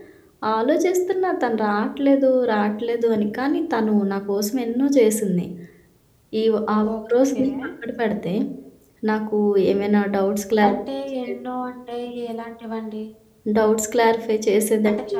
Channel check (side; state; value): both; identical; correlation 1.00